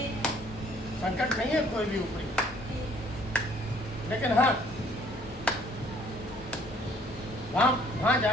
संकट नहीं है कोई भी ऊपरी, लेकिन हाँ, वहाँ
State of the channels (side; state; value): both; normal; correlation 0.60